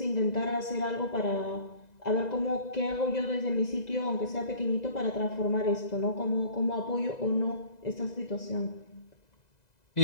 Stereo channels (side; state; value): right; late; 2.0 ms